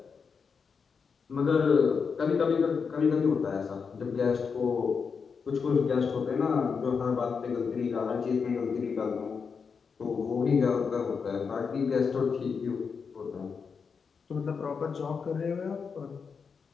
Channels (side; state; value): right; quieter; 5.7 dB